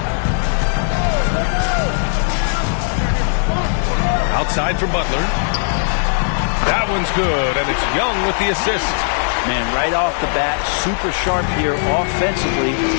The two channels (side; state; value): right; silent; digital silence